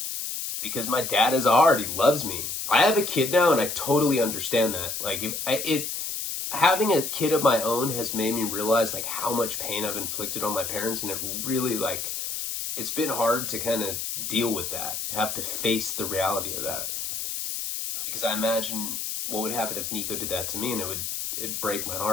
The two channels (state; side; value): noise; left; hiss, 4 dB below the sound